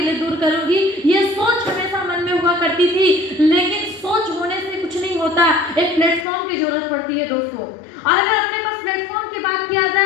लिए दूर करूंगी। ये सोच हमेशा मन में हुआ करती थी। लेकिन सोच होने से कुछ नहीं होता, एक प्लेटफॉर्म की जरूरत पड़ती है दोस्तों। और अगर अपने पास प्लेटफॉर्म की बात किया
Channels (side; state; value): right; drops out; at 6.2 s